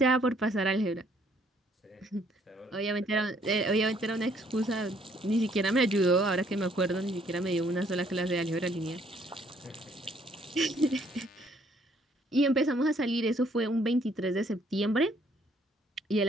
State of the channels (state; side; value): normal; both; correlation 0.65